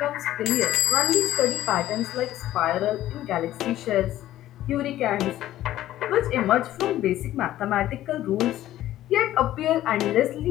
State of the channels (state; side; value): quieter; right; 13.7 dB